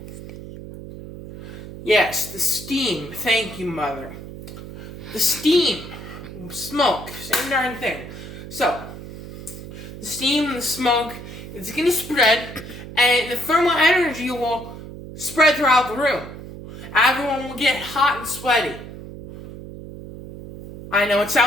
Yes, the steam. Thank you, Mother. The steam, smoke, same darn thing. So, the steam and the smoke is going to spread, and the thermal energy will spread throughout the room. Everyone will get hot and sweaty. I know it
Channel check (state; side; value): noise; right; hum, 12 dB below the sound